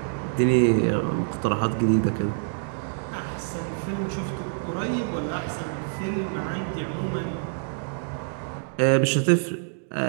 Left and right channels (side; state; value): left; silent; digital silence